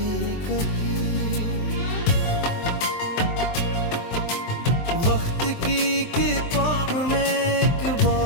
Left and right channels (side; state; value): right; late; 23 ms